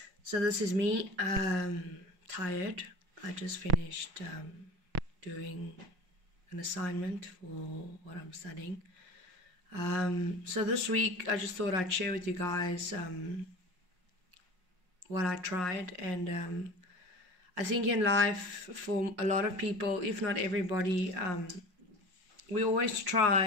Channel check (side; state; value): left; late; 5.5 ms